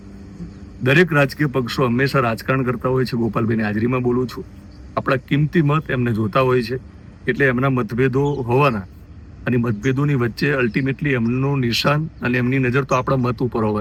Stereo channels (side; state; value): both; identical; correlation 1.00